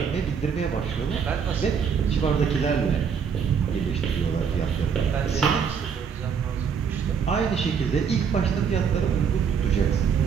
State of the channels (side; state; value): left; quieter; 6.7 dB